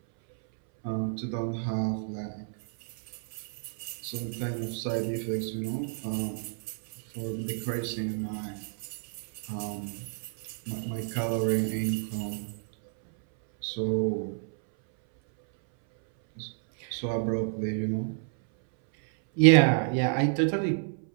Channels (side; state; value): left; silent; 58 dB below the other